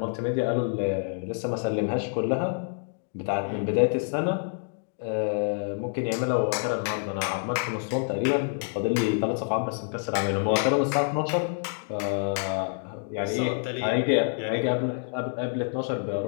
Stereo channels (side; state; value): right; silent; 60 dB below the other